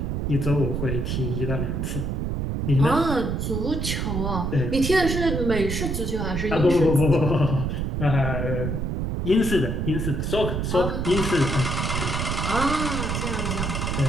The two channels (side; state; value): right; noise; rumble, 1 dB below the sound